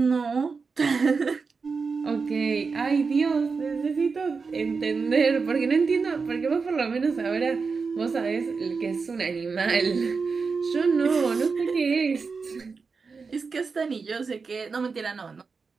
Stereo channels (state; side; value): quieter; left; 4.8 dB